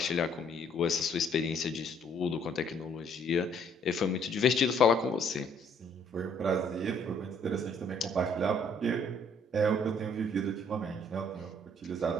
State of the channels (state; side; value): normal; both; correlation 0.63